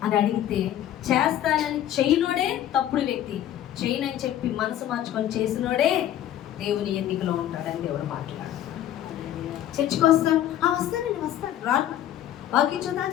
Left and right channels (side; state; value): right; quieter; 11.7 dB